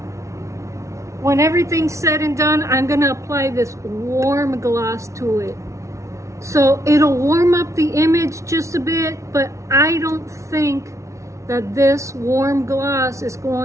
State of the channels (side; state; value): left; late; 0.14 ms